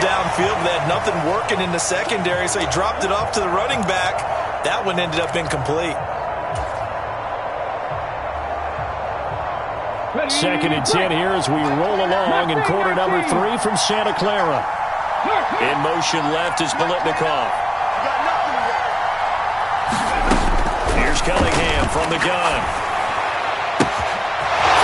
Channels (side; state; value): both; identical; correlation 1.00